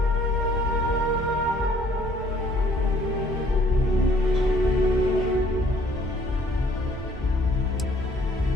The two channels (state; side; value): normal; both; correlation 0.60